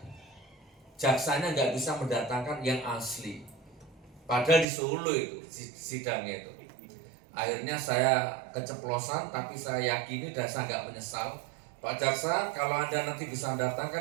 Jaksanya nggak bisa mendatangkan yang asli. Padahal di Solo itu sidangnya itu. Akhirnya saya keceplosan, tapi saya yakini dan saya nggak menyesal. Pak Jaksa, kalau Anda nanti bisa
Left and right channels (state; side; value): drops out; left; at 4.7 s